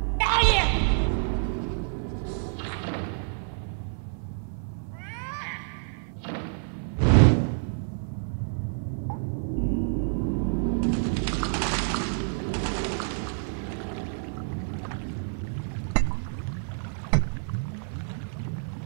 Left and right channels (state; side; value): silent; left; 59 dB below the other